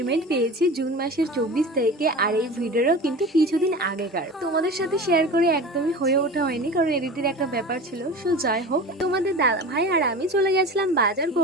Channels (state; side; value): normal; both; correlation 0.33